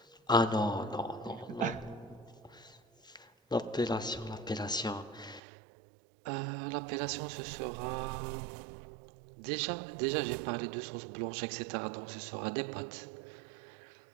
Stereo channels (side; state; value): left; drops out; at 5.4 s